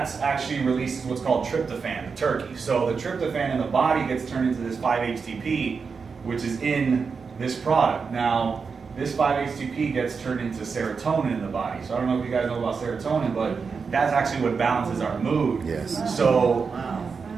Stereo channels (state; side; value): quieter; left; 5.3 dB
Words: actually releases what's called tryptophan, the turkey. So the tryptophan in the body gets turned into this 5-HTP, which is in this product. Now, this 5-HTP gets turned into serotonin in the body. So I don't know if you guys know about serotonin, but that's actually what balances our mood. Yes. So